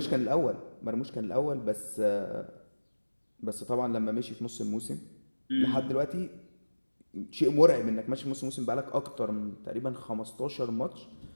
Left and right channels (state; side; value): inverted; both; correlation -1.00